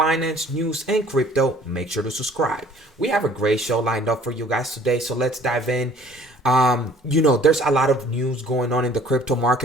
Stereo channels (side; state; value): both; normal; correlation 0.54